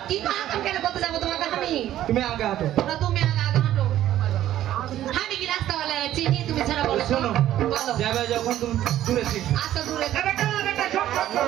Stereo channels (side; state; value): left; quieter; 12.7 dB